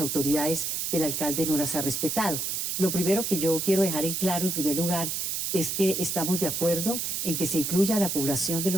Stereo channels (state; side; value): noise; right; hiss, 1 dB below the sound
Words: autoridades que el alcalde no las ha respetado. Lo primero que yo quiero dejar en claro, en primer lugar, es que estamos de acuerdo en que se incluya a la población de